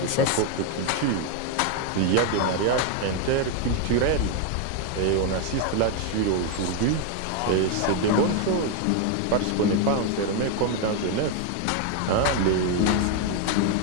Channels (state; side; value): different; both; correlation 0.01